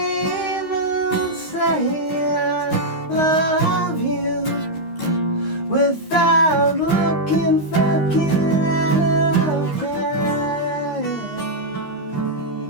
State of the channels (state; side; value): late; right; 13 ms